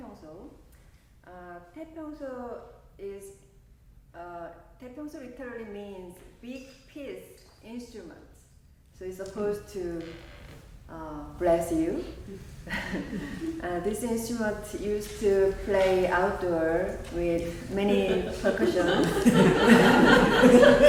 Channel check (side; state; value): both; identical; correlation 1.00